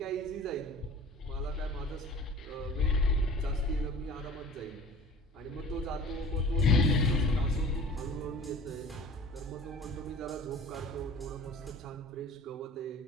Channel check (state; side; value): normal; both; correlation 0.43